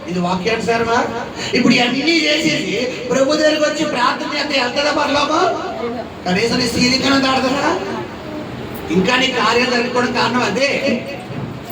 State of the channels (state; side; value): identical; both; correlation 1.00